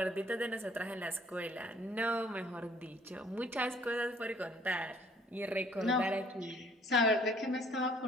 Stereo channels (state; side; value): normal; both; correlation 0.58